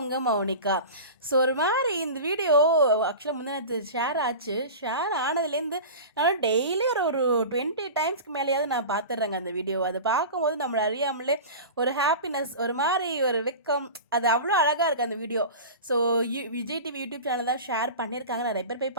மௌனிகா. ஸோ ஒரு மாதிரி இந்த வீடியோ ஆக்சுவலாக முந்தினத்து ஷேர் ஆச்சு. ஷேர் ஆனதுலேருந்து நான் டெய்லி ஒரு ஒரு 20 டைம்ஸ்க்கு மேலேயாவது நான் பார்த்துட்றேங்க அந்த வீடியோ. அதை பார்க்கும்போது நம்மளை அறியாமலே ஒரு ஹாப்பினஸ், ஒரு மாதிரி ஒரு வெக்கம், அது அவ்வளோ அழகாக இருக்குது அந்த video. So Vijay TV YouTube channel தான் ஷேர் பண்ணியிருக்காங்க. நிறைய பேர் போய்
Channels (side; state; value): both; inverted; correlation -0.32